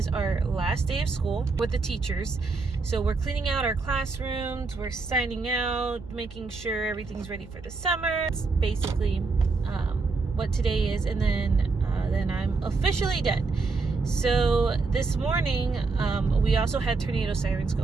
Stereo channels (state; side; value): quieter; left; 4.1 dB